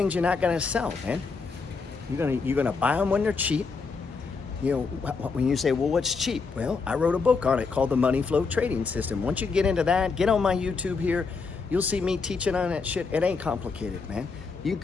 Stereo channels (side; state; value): right; quieter; 4.7 dB